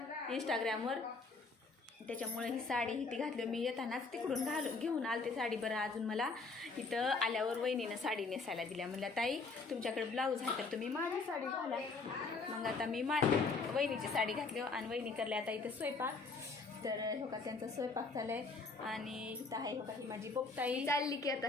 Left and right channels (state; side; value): quieter; right; 4.1 dB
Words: इंस्टाग्रामवर. त्याच्यामुळे ही साडी ती घातली मी येतानाच तिकडून घेऊन आलते साडी. बरं अजून मला इथं आल्यावर वहिनीनं साडी नेसायला दिल्या. म्हणल्या ताई तुमच्याकडे ब्लाऊज आहे तर तुम्ही माझी साडी घाला. मग आता मी वहिनीची साडी घातली आणि वहिनी करल्या आता इथं स्वयंपाक. तर हो का त्यांचा स्वयंपाक चाललाय आणि इथं आहे हो का ही माझी बोपताई चालली की आता